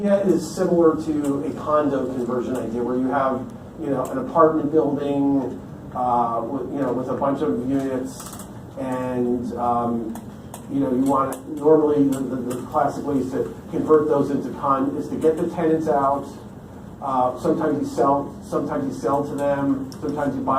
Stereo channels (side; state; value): both; identical; correlation 1.00